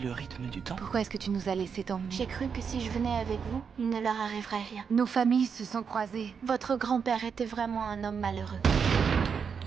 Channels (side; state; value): left; quieter; 6.4 dB